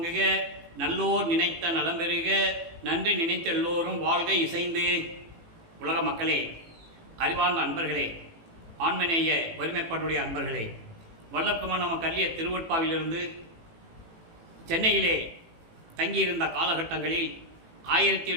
நல்லோர் நினைத்த நலம் பெறுக, நன்றி நினைத்த எல்லோரும் வாழ்க இசைந்து. உலக மக்களே, அறிவார்ந்த அன்பர்களே, ஆண்மநேய வறுமைப்பாட்டுடைய அன்பர்களே, வல்லப்பமான நம்ம கல்லிய திருவட்பாவிலிருந்து சென்னையிலே தங்கியிருந்த காலகட்டங்களில்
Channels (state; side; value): late; left; 18 ms